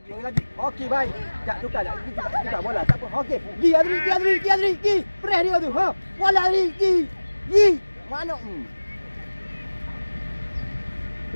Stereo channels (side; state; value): both; inverted; correlation -1.00